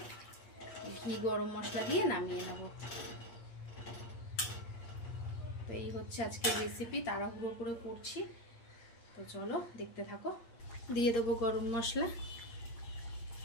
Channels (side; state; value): right; late; 8.6 ms